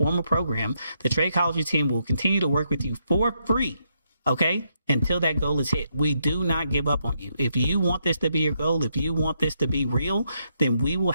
program, the Tradechology team will continue to work with you for free, okay, until that goal is hit. We do not give up on you. If you want this to be your goal, if you want this to be real, then we will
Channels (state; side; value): inverted; both; correlation -0.78